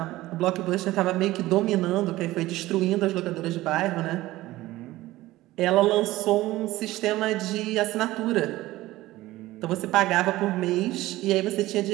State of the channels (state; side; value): quieter; left; 17.2 dB